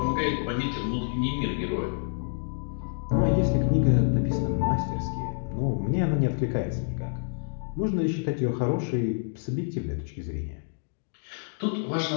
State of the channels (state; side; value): silent; right; digital silence